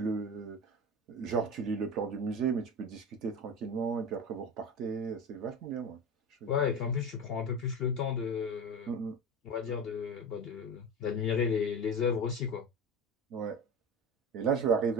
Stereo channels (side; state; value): both; normal; correlation 0.27